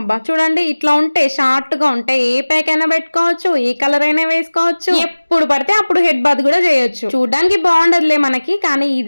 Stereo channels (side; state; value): both; inverted; correlation -1.00